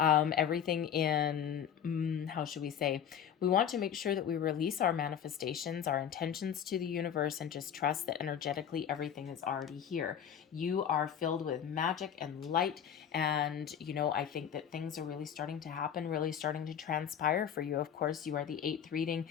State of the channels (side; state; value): right; quieter; 8.7 dB